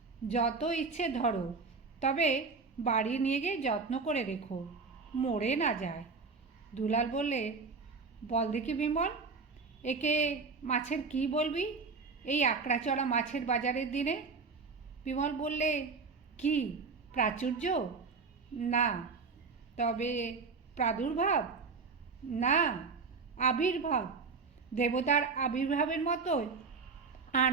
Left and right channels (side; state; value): left; quieter; 4.6 dB